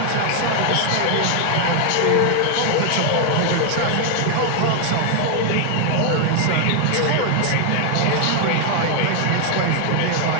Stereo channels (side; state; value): both; different; correlation 0.00